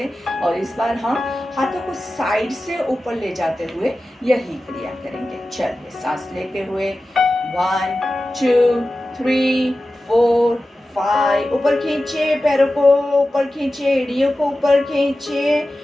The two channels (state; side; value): normal; both; correlation 0.94